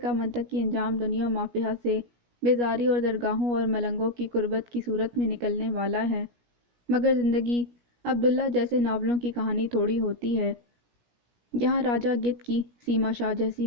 منطقی انجام دنیا مافیہا سے بیزاری اور درگاہوں اور ملنگوں کی قربت کی صورت میں نکلنے والا ہے۔ مگر زندگی عبداللہ جیسے ناولوں کی کہانی تھوڑی ہوتی ہے۔ یہاں راجہ گدھ کی سیما شاہ جیسی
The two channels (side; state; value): left; late; 17 ms